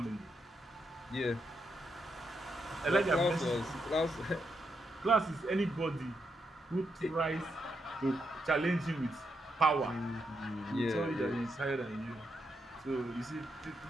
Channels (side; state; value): both; normal; correlation 0.81